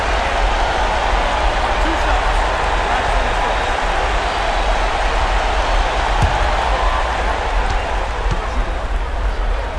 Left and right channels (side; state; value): both; identical; correlation 1.00